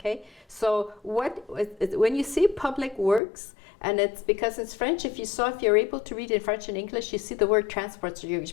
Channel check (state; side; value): drops out; right; at 3.2 s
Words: So when you see public works, and it's because it's French, if you're able to read in French and English, you see the word transport, so you're